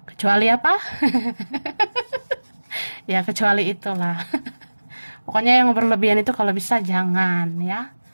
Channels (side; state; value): both; inverted; correlation -1.00